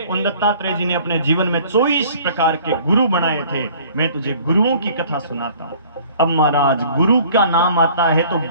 उन दत्तात्रेय जी ने अपने जीवन में 24 प्रकार के गुरु बनाए थे। मैं तुझे गुरुओं की कथा सुनाता हूं। अब महाराज गुरु का नाम आता है तो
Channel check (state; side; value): inverted; both; correlation -0.52